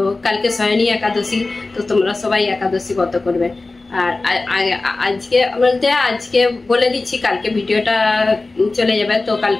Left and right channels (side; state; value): right; quieter; 3.3 dB